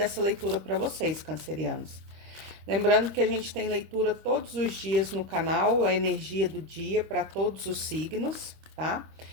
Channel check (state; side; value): late; left; 26 ms